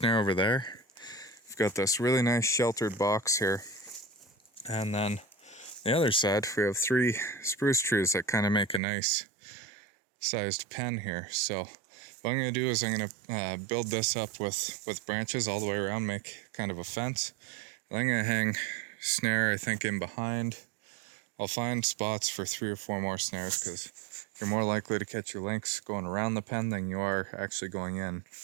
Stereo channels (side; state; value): left; drops out; at 8.8 s